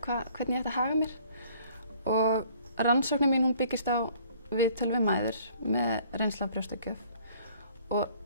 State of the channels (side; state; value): both; inverted; correlation -0.57